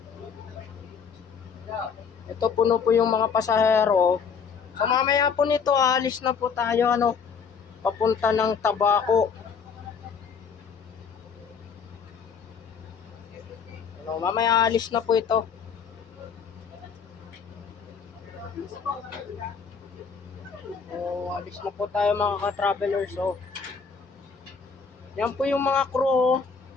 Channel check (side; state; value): right; quieter; 6.0 dB